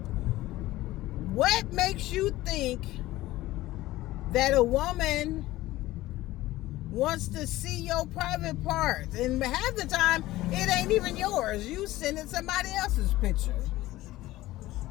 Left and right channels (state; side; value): quieter; right; 16.9 dB